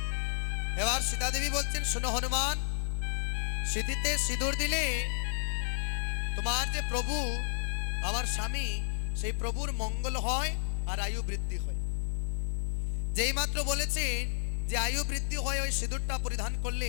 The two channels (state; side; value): silent; right; digital silence